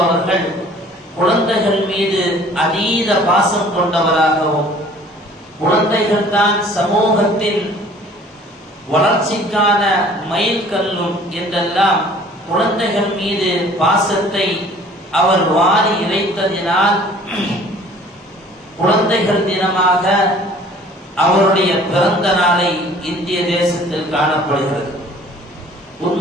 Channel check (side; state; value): both; normal; correlation 0.52